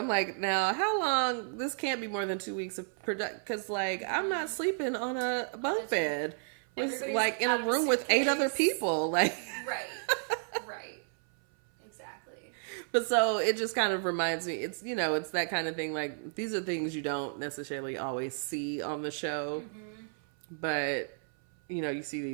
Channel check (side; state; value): left; silent; 56 dB below the other